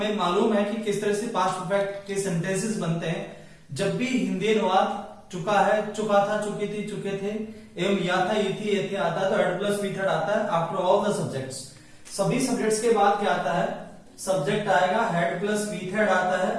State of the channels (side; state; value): both; identical; correlation 1.00